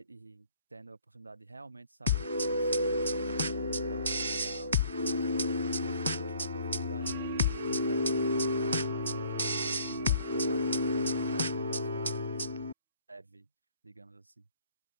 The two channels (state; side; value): inverted; both; correlation -0.57